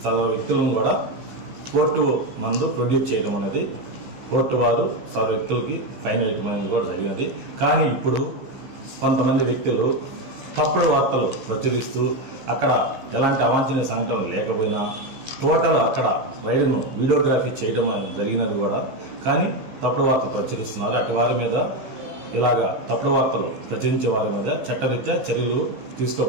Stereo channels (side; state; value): left; late; 15 ms